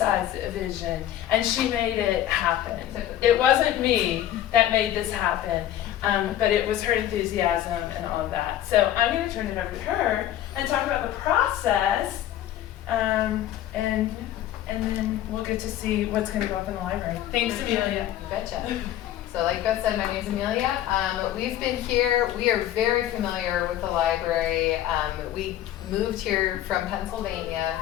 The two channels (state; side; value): quieter; right; 12.3 dB